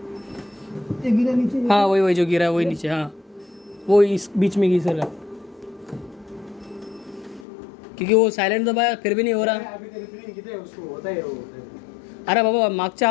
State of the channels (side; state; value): right; drops out; at 7.5 s